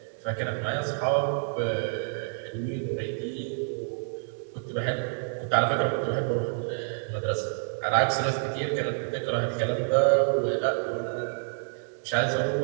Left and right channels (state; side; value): silent; left; digital silence